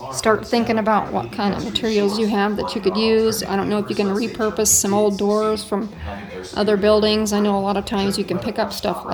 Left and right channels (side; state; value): both; identical; correlation 1.00